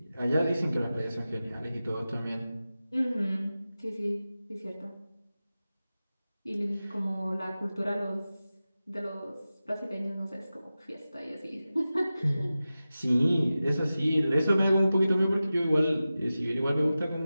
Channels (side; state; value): both; inverted; correlation -0.95